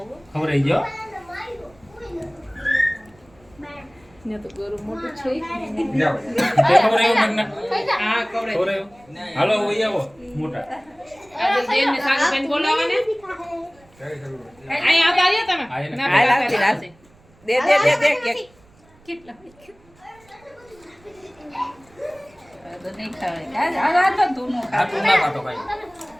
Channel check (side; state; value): right; noise; rumble, 29 dB below the sound